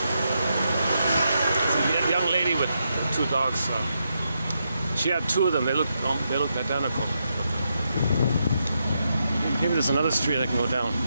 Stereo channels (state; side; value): inverted; both; correlation -0.83